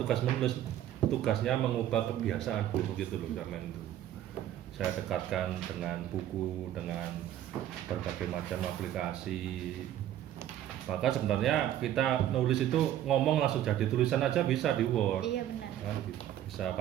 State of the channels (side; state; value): left; quieter; 11.9 dB